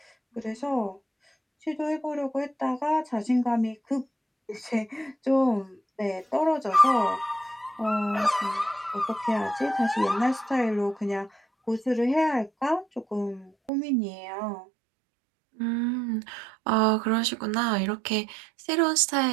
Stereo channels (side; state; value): left; drops out; at 13.7 s